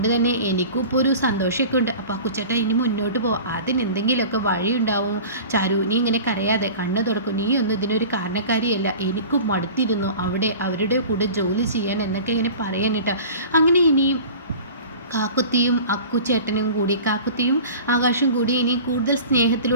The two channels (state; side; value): inverted; both; correlation -0.39